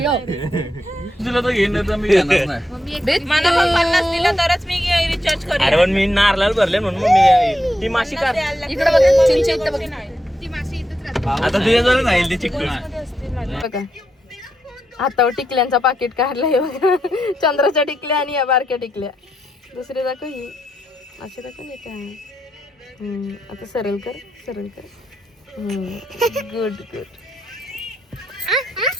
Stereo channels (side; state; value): both; normal; correlation 0.83